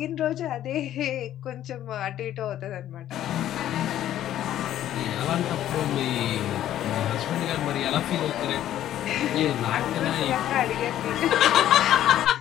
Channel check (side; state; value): right; quieter; 12.1 dB